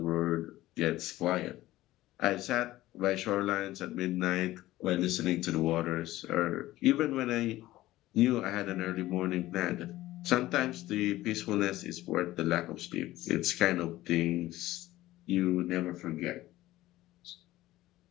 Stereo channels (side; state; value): right; quieter; 16.4 dB